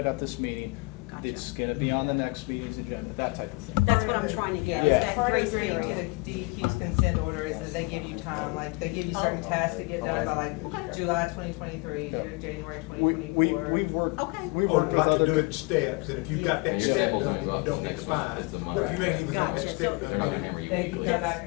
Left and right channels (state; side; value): quieter; right; 27.1 dB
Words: at this meeting, Gotcha. it's gonna be on the next meeting's agenda, that type of thing. That's what I'm trying to get, is Yeah. that Part of grace agreeing to period. the DEQ's consent order is that they give you time, like, they give you certain Oh. tasks to get done by like July 2023, January We've 2024. worked, Okay. we've Or worked with like to do other. it in steps, and if you've got that Your step samples done, only you go up don't to get the next month. fine. It's a month. But if you ain't even got that Gotcha. step So- done. They're not gonna hammer you. They can come